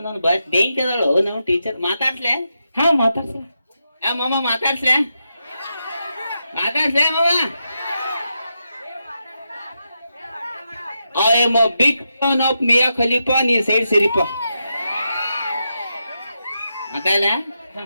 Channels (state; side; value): inverted; both; correlation -0.86